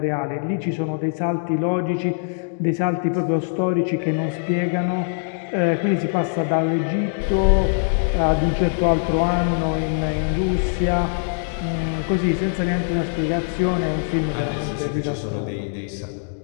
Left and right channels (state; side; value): silent; right; digital silence